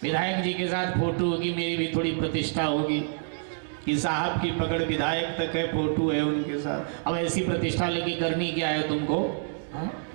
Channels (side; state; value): left; silent; 60 dB below the other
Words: विधायक जी के साथ फोटो होगी, मेरी भी थोड़ी प्रतिष्ठा होगी कि साहब की पकड़ विधायक तक है, फोटो है उनके साथ। अब ऐसी प्रतिष्ठा लेके करनी क्या है तुमको?